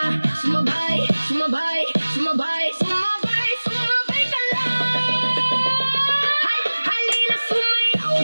Sumabay, sumabay, sumabay, sumabay, sumabay ka lang. Halina sumayaw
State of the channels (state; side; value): inverted; both; correlation -1.00